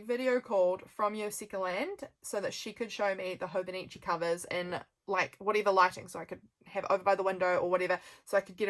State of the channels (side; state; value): both; identical; correlation 1.00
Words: video called from Yosika Land so that she could show me the Hobonichi covers in like whatever lighting, so I could have over by the window or whatever, so I could get